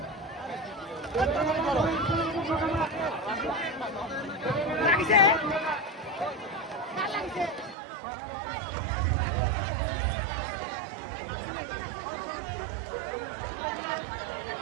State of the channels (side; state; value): left; drops out; at 7.8 s